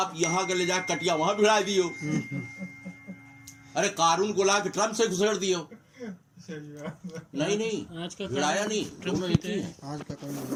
یہاں کے لے جا کٹیا وہاں بھڑا دیو. ارے قارون کو لا کے ٹرمپ سے گھسڑ دیو. نہیں آج کا بھڑایا نہیں، دونوں ایک ہی ہیں. آج کا قانون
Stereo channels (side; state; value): both; identical; correlation 1.00